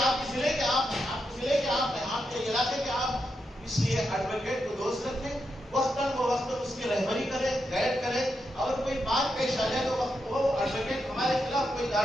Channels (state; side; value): normal; both; correlation 0.85